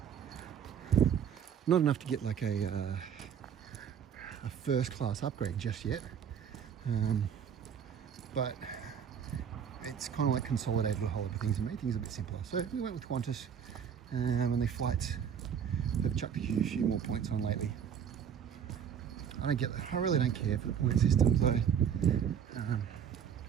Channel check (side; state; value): left; quieter; 8.1 dB